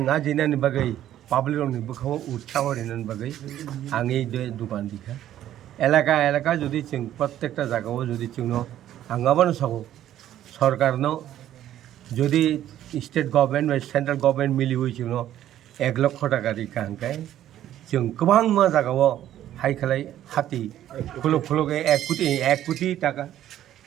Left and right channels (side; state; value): left; quieter; 12.1 dB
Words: ajina ni bagai public rok ni bukhaw utsaw rinan bagai angi de dukan dikha এলাকা যদি চিং প্রত্যেকটা জায়গাও যদি চিংনো আঙ্গাবানো sago সরকার no যদি state government বা central government মিলি হই চিংনো 1 লক্ষ টাকা দি কাঙ্কাই চিং গোবাং মা জায়গাও হাই খালাই হাতি খুলুকে 1 কোটি টাকা